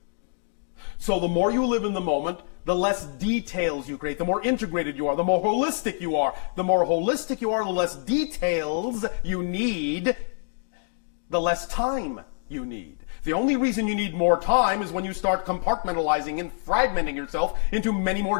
So the more you live in the moment, the less details you create, the more integrated you are, the more holistic you are. The more holistic you are, the less details you need, the less time you need. The only reason you need more time is when you start compartmentalizing and fragmenting yourself into many more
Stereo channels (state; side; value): silent; right; 61 dB below the other